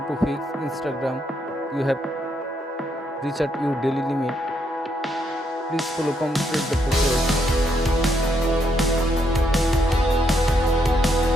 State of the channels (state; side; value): normal; both; correlation 0.76